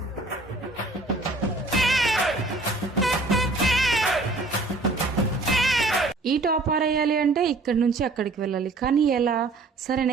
ఈ టాప్ ఆరేయాలి అంటే ఇక్కడి నుంచి అక్కడికి వెళ్ళాలి, కానీ ఎలా? సరే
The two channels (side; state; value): left; quieter; 3.2 dB